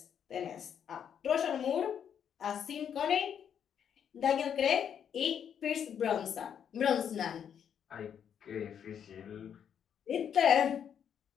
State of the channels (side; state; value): right; quieter; 8.4 dB